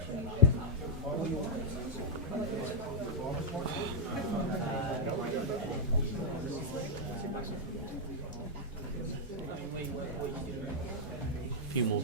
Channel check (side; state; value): both; normal; correlation -0.05